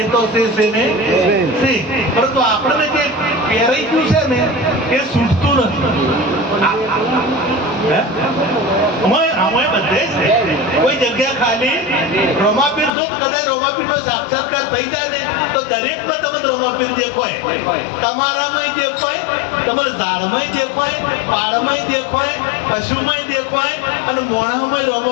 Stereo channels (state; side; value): drops out; right; at 12.9 s